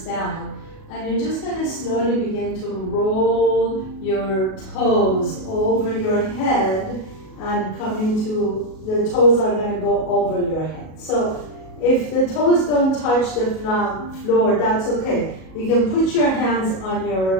down. And you're just going to slowly begin to roll your toes over your head and come into, the toes are going to go over your head. So if the toes don't touch the floor, that's okay. You can put your hands on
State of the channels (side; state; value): right; late; 37 ms